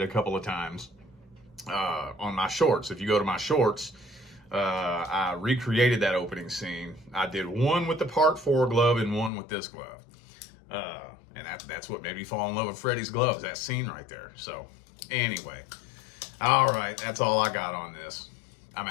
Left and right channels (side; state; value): right; drops out; at 9.3 s